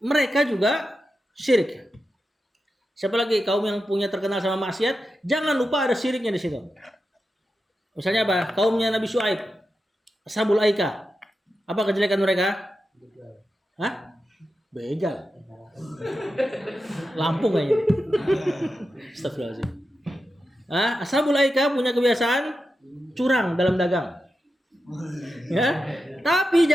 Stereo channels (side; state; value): both; normal; correlation 0.90